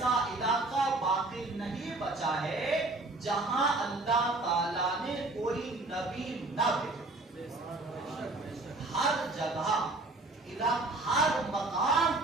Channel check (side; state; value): left; quieter; 3.0 dB